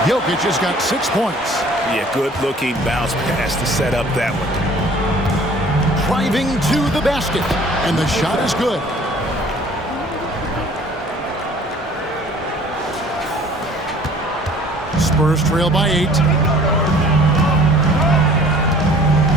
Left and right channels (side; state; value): both; normal; correlation 0.52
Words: Jokic has got 6 points. Yeah, good-looking bounce pass to set up that one. Driving to the basket, and the shot is good. Spurs trail by 8.